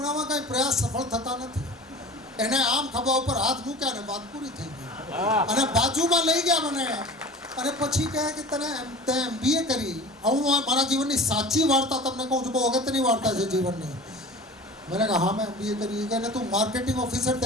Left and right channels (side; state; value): both; normal; correlation 0.39